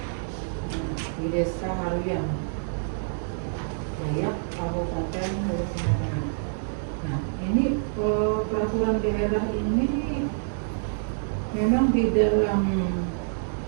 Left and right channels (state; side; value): silent; left; digital silence